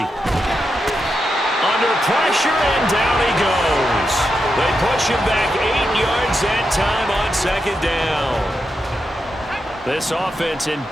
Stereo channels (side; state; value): both; normal; correlation 0.86